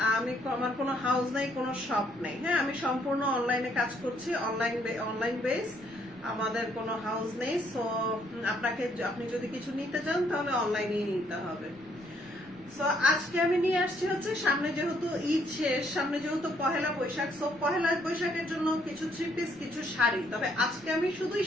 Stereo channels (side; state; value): left; noise; rumble, 28 dB below the sound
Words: আমার কোনো হাউস নাই, কোনো শপ নেই। হ্যাঁ, আমি সম্পূর্ণ অনলাইনে কাজ করছি, অনলাইন বেস। আমাদের কোনো হাউস নেই। সো আপনি যদি কিছু নিতে চান তাহলে অনলাইনেই নিতে হবে। সো আজকে আমি নিয়ে আসছি হচ্ছে, সামনে যেহেতু ঈদ শেষ, সামনে যেহেতু পহেলা বৈশাখ, সো পহেলা বৈশাখের জন্য কিছু থ্রি পিস, কিছু শাড়ি। তবে আজকে আমি শুধুই